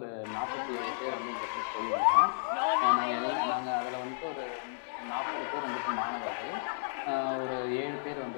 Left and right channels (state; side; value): silent; right; 56 dB below the other